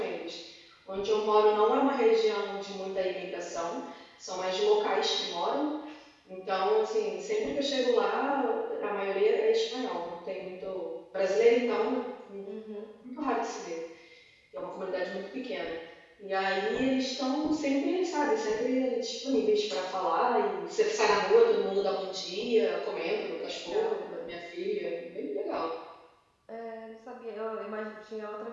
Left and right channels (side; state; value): both; identical; correlation 1.00